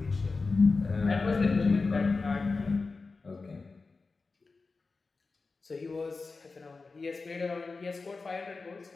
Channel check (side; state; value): right; quieter; 4.0 dB